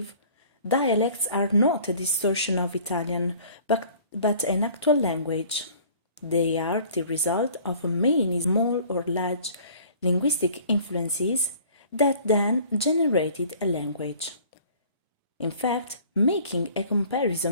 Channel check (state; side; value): inverted; both; correlation -0.50